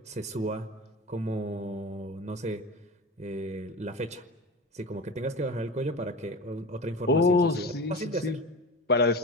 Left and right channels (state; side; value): normal; both; correlation 0.30